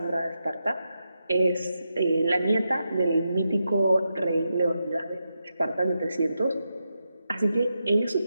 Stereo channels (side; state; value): both; inverted; correlation -0.87